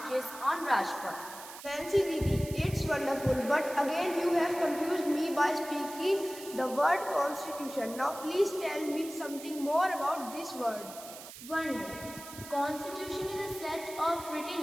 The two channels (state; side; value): noise; right; hiss, 14 dB below the sound